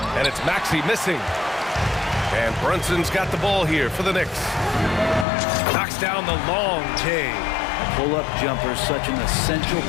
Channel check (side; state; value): right; drops out; at 5.2 s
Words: and it's Maxey missing. And Brunson's got the ball here for the Knicks. Knocks down the long J. Pull-up jumper, such an essential